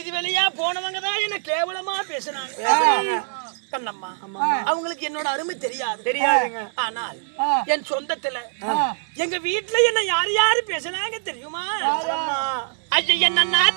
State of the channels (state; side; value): silent; left; digital silence